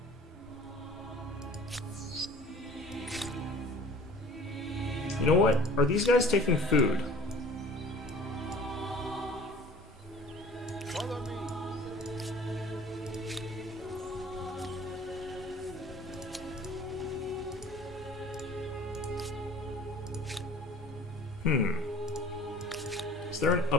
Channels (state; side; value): normal; both; correlation 0.47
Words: You know what? Are these guys taking food? Follow me. Is there an